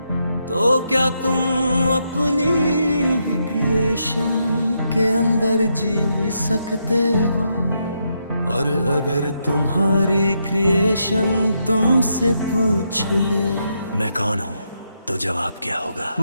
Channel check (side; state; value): both; inverted; correlation -0.80